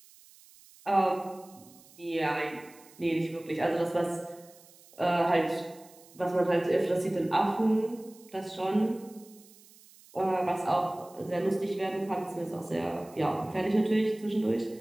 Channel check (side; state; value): right; noise; hiss, 24 dB below the sound